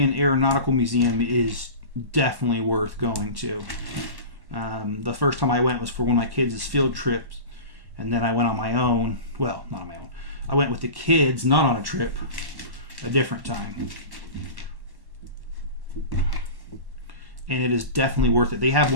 Aeronautical Museum is definitely worth going to. The first time I went was for one of my kids' field trips, and then I went on my own. Well, not on my own. I went with the kids, not on a trip, a different time. And it is definitely worth it. They have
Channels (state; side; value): late; left; 1.1 ms